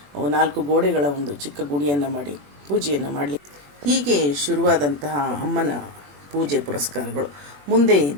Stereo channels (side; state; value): left; late; 21 ms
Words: 4 ಗೋಡೆಗಳ ಒಂದು ಚಿಕ್ಕ ಗುಡಿಯನ್ನು ಮಾಡಿ ಪೂಜೆಯನ್ನು ಮಾಡಲಿಕ್ಕೆ ಹೀಗೆ ಶುರುವಾದಂತಹ ಅಮ್ಮನ ಪೂಜೆ ಪುರಸ್ಕಾರಗಳು ಮುಂದೆ